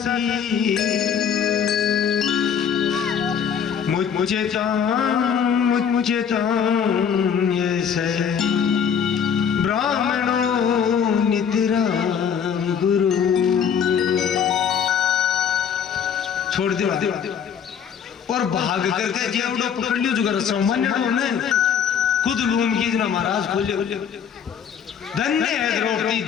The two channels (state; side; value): quieter; right; 7.6 dB